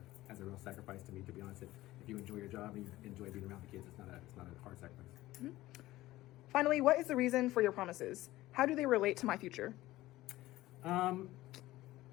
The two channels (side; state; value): right; quieter; 16.9 dB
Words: a real sacrifice to me, to be honest. If you enjoy your job and you enjoy being around the kids, it's not a hard sacrifice. Mm-hmm. Finally, what is the reason for your promises? How do they relate to my future? The